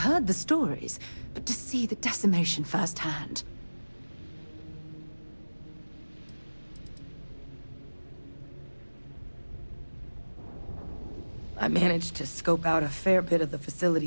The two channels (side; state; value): both; inverted; correlation -1.00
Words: the stories, but to see the decimation firsthand... I managed to scope out a fair bit of the